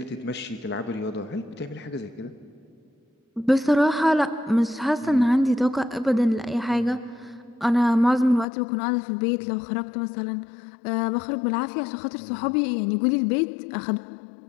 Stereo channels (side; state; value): right; drops out; at 8.5 s